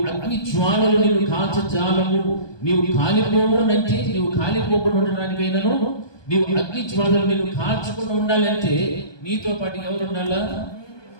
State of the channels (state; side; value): late; right; 1.2 ms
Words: అగ్ని జ్వాలలు నీవు కాల్చజాలము, నీవు కాలిపోవునంటే నీవు కాలిపోకుండా ఉండడానికైనాను నీవు అగ్ని జ్వాలలు నీవు కాల్చకుండా ఉండాలంటే నీతో పాటు ఎవరు ఉండాలా?